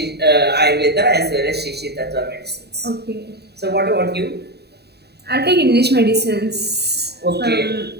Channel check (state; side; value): late; left; 0.48 ms